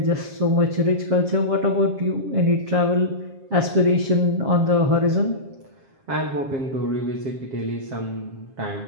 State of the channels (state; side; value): late; left; 7.4 ms